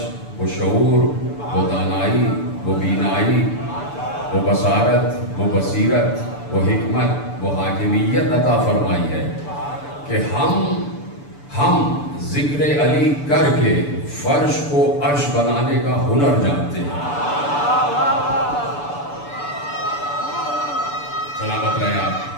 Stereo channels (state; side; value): late; right; 6.9 ms